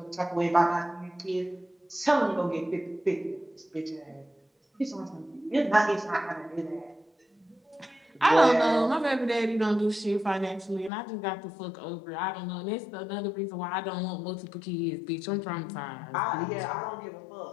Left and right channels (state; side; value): drops out; right; at 10.9 s